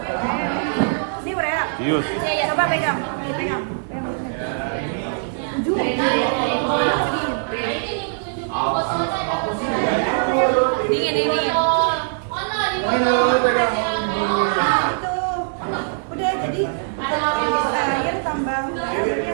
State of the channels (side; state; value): left; silent; 58 dB below the other